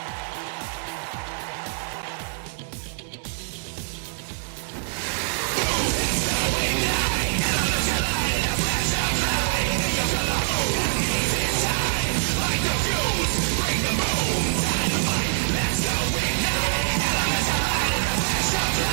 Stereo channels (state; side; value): silent; left; 62 dB below the other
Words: at Slammiversary and then coming over right here to AEW. Stay with us.